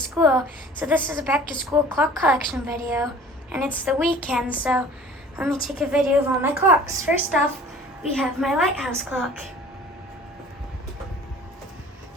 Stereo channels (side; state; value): both; normal; correlation 0.47